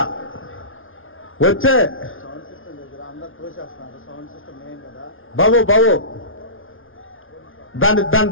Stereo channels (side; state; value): right; late; 0.58 ms